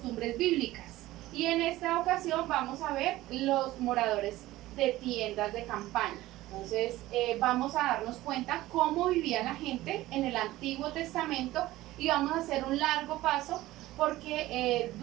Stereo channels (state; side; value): quieter; left; 16.8 dB